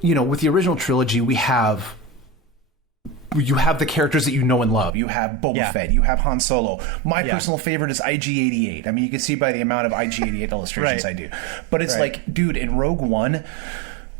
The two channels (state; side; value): drops out; left; at 4.9 s